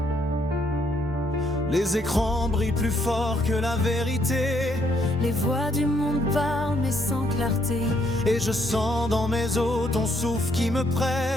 Les écrans brillent plus fort que la vérité. Les voix du monde parlent mais sans clarté. Et je sens dans mes os ton souffle qui me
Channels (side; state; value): both; normal; correlation 0.71